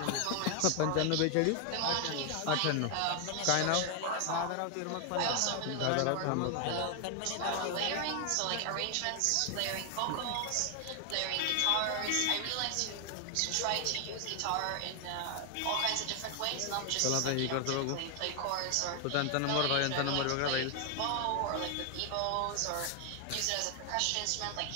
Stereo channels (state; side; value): different; both; correlation 0.00